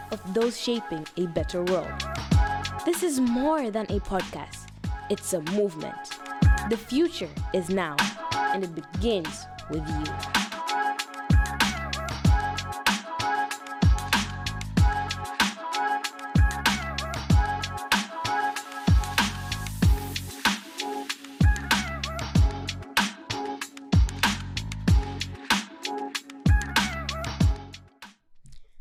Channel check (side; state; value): both; identical; correlation 1.00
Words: of those shaping a better world. This is more than a podcast. It's a movement. The future is now, and it begins with you.